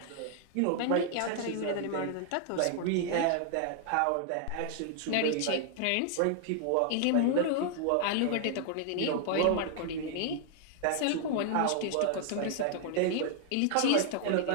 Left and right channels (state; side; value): different; both; correlation 0.00